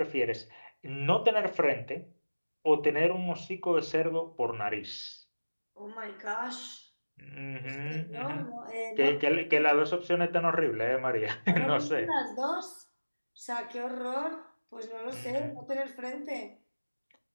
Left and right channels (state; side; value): inverted; both; correlation -1.00